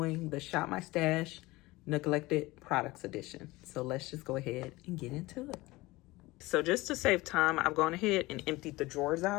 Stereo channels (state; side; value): quieter; right; 20.4 dB